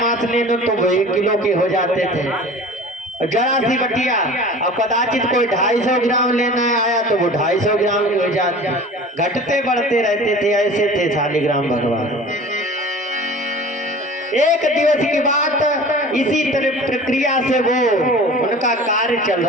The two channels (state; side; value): normal; both; correlation 0.40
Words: मांस लेने तो वो 1 किलो के हो जाते थे। जरा सी बटिया और कदाचित कोई 250 ग्राम लेना आया तो वो 250 ग्राम हो जाते, घटते बढ़ते रहते थे। ऐसे थे शालिग्राम भगवान। एक दिवस की बात, इसी तरह प्रक्रिया से वो उनका कार्य चल